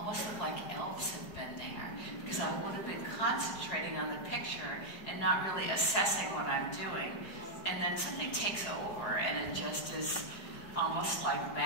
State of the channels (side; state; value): right; late; 4.8 ms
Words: look like elves have been there, because I would have been concentrating on the picture and not really assessing what I'm doing. And then something takes over, and it just is almost like